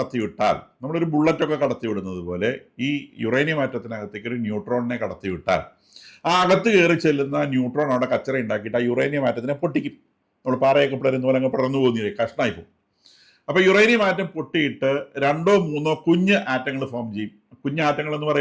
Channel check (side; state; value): both; identical; correlation 1.00